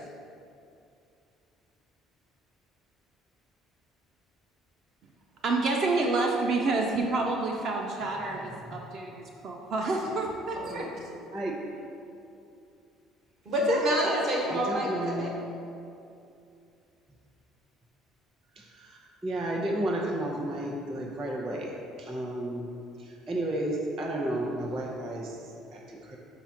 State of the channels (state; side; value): normal; both; correlation 0.61